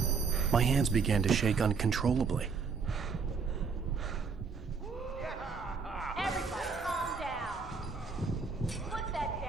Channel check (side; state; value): left; quieter; 5.2 dB